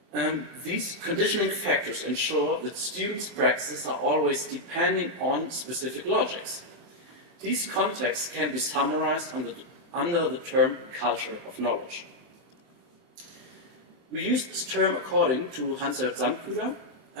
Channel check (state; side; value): late; left; 23 ms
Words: These conditioning factors ensure that students' practices are always depending on specific logics. These contexts can be summarized under the term culture of knowledge. We use this term according to Hans-Jörg